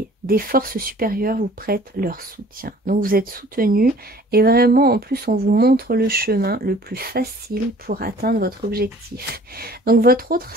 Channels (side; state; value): both; normal; correlation 0.51